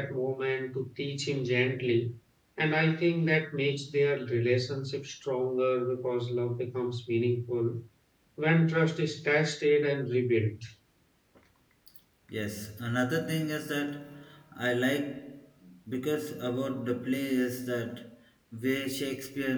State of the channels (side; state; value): both; identical; correlation 1.00